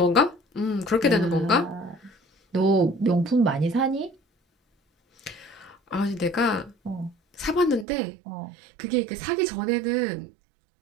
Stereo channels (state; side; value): drops out; left; at 7.9 s